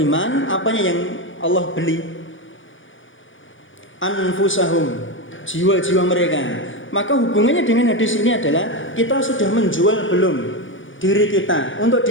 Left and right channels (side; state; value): right; late; 0.56 ms